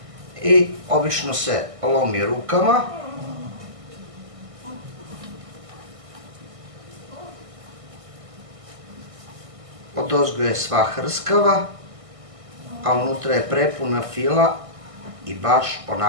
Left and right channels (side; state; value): left; late; 1.6 ms